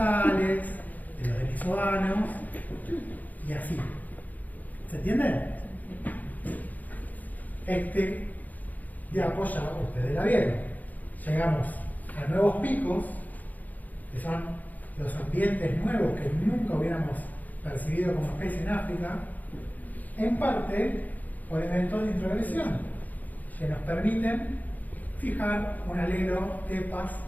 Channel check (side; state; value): right; late; 0.081 ms